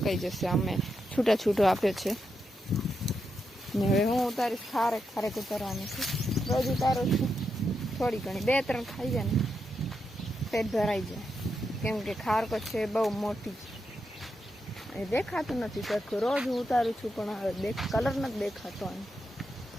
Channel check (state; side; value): normal; both; correlation 0.84